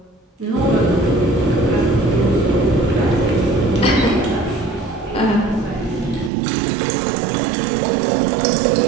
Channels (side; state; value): left; drops out; at 6.3 s